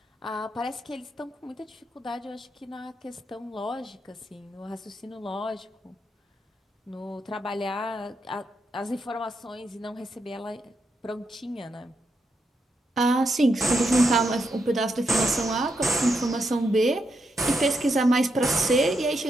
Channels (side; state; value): both; normal; correlation 0.82